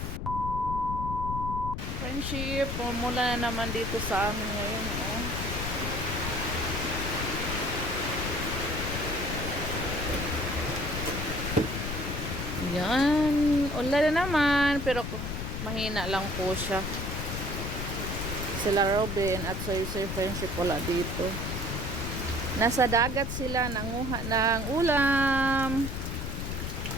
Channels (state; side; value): noise; left; rumble, 4 dB below the sound